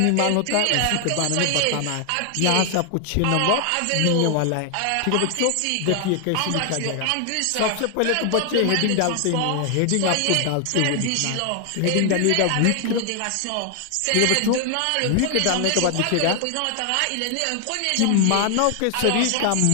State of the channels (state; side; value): different; both; correlation 0.00